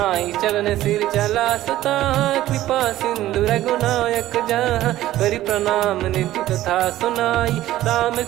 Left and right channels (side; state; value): left; quieter; 14.6 dB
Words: चरण सिर चला सता, कृपा सिंधु रघुनायक जहाँ। करि प्रणाम निधि कथा सुनाई, राम